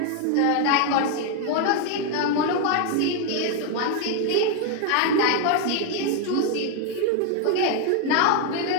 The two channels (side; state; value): both; different; correlation 0.01